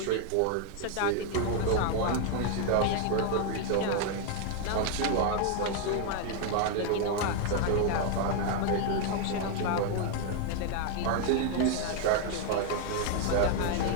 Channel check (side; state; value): both; different; correlation 0.00